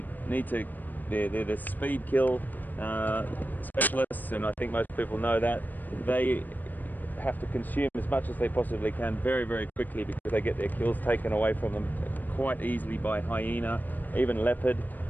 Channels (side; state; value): right; late; 0.087 ms